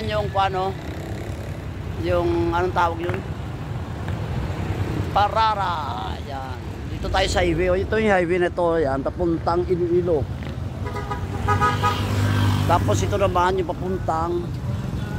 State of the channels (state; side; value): identical; both; correlation 1.00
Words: yung paano, yung anong tawag yun? Parara. Yan. Dito tayo sa highway. Ito yung highway na ito. Yan, papuntang Iloilo. Tapos ito naman yung papuntang